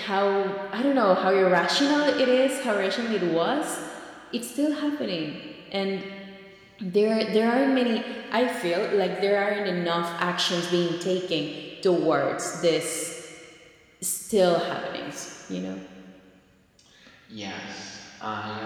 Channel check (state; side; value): identical; both; correlation 1.00